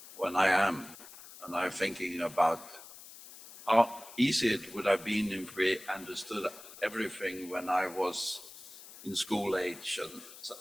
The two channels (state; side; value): noise; left; hiss, 17 dB below the sound